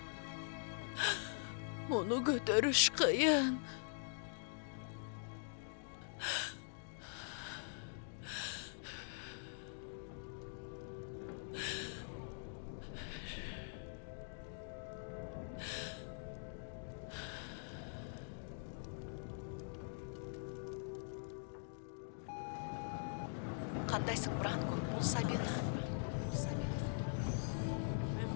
Муну көтөрүш кыйын. Кандайсың, Бранко? Бул Сабина.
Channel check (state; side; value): silent; right; digital silence